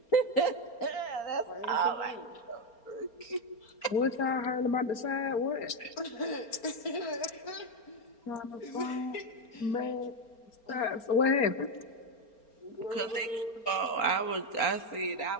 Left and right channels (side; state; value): right; late; 4.3 ms